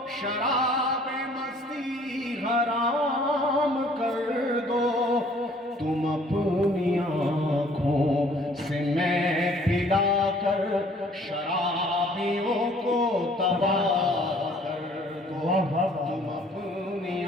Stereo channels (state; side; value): normal; both; correlation 0.57